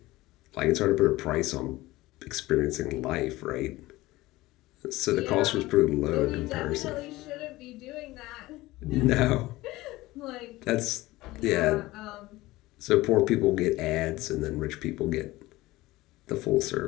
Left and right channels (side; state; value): right; quieter; 18.7 dB